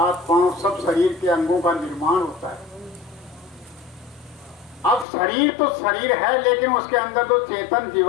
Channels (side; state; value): right; drops out; at 5.1 s